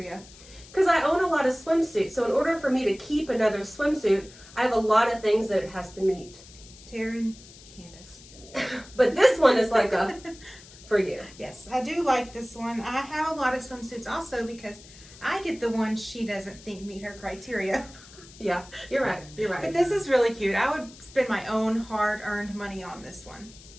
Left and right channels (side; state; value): left; noise; hiss, 20 dB below the sound